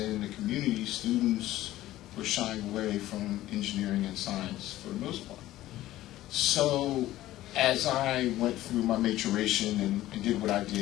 the community, students were shying away from engineering and science for the most part. So as I went through my maturation and did what I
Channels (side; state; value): right; quieter; 15.2 dB